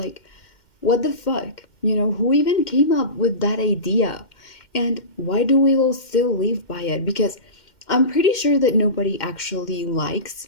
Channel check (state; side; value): late; right; 2.1 ms